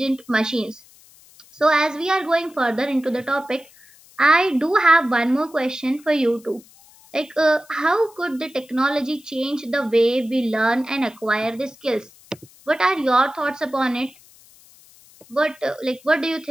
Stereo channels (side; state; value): left; noise; hiss, 26 dB below the sound